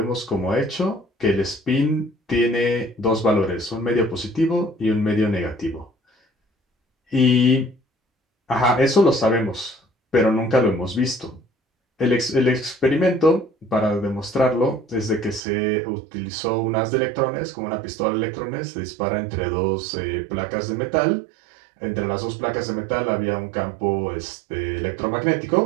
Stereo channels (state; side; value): drops out; left; at 15.4 s